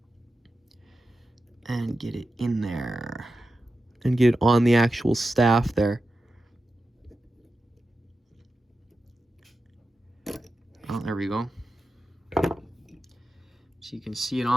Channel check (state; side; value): normal; both; correlation 0.91